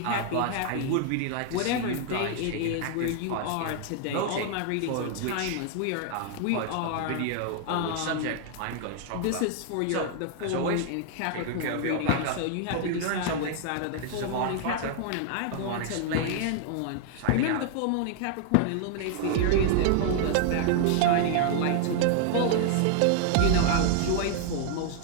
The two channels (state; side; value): different; both; correlation 0.00